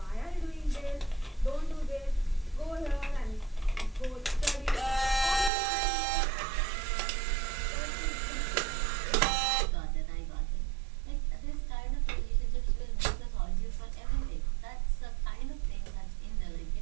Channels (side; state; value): left; drops out; at 5.5 s